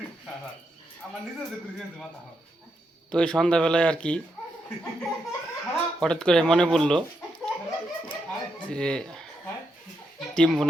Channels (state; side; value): normal; both; correlation 0.81